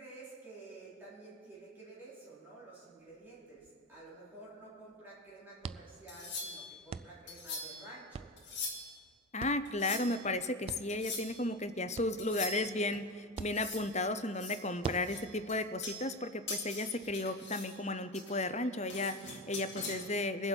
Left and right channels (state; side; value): normal; both; correlation 0.22